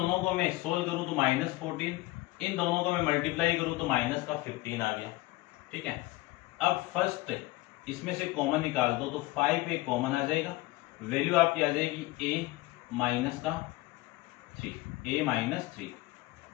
को मैं सोल्व करूं तो -14, इन दोनों को मैं मल्टीप्लाई करूं तो माइनस का 15 आ गया, ठीक है। अब फर्स्ट इसमें से कॉमन निकाल दो तो 5a कॉमन आ जाएगा, वैल्यू आपकी आ जाएगी a माइनस का 3, a माइनस 3,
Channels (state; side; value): quieter; right; 19.4 dB